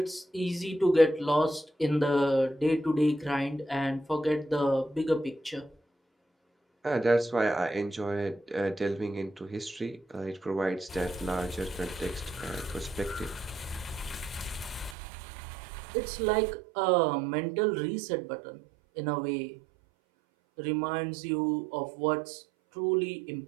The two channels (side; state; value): left; drops out; at 15.0 s